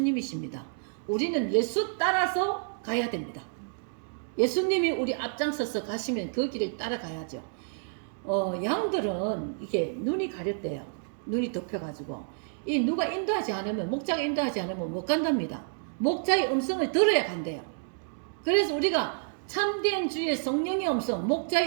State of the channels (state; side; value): silent; left; digital silence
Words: 우리는 예수 따라서 가야 됩니다. 예수님이 우리 앞장서서 가시면 그 길을 따라가야죠. 양들은 이게 눈이 가렸대요. 눈이 덮여가지고 이 누가 인도하지 않으면, 목자가 인도하지 않으면 못 간답니다. 목자의 음성을 들어야 간대요. 그래서 우리가 참된 주의 성령의 음성,